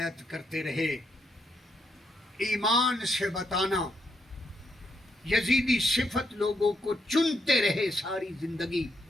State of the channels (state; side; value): normal; both; correlation 0.77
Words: کرتے رہے ایمان سے بتانا یزیدی صفت لوگوں کو چنتے رہے ساری زندگی